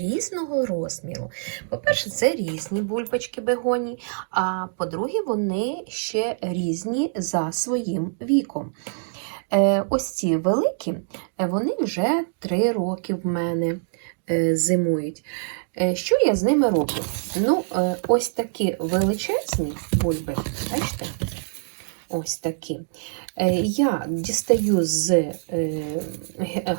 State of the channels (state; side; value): silent; left; digital silence